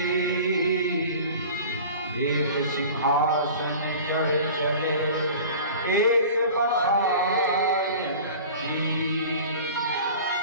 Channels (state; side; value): inverted; both; correlation -0.40